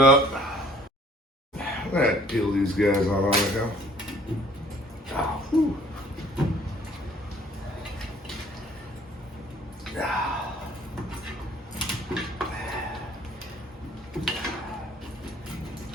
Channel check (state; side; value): normal; both; correlation 0.56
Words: I'm gonna peel these guys on right now. Oh, whew.